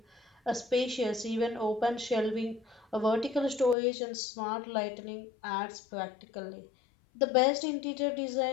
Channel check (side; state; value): right; drops out; at 3.8 s